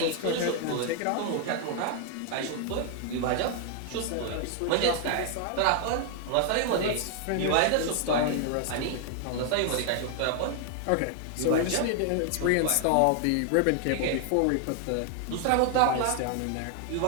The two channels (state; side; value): different; both; correlation 0.00